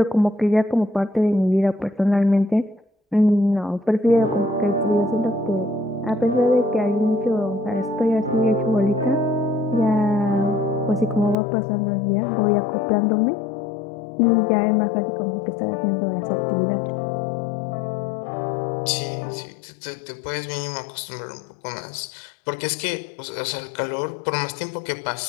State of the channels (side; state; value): right; drops out; at 11.4 s